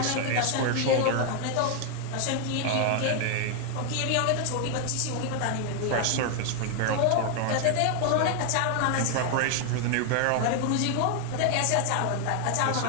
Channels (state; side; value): different; both; correlation 0.00